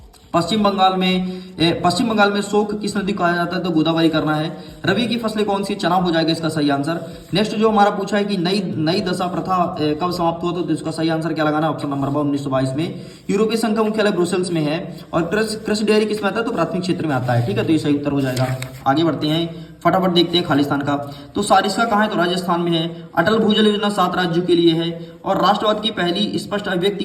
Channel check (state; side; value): identical; both; correlation 1.00